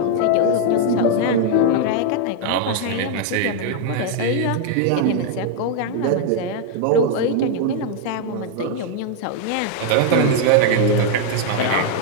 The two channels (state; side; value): different; both; correlation 0.00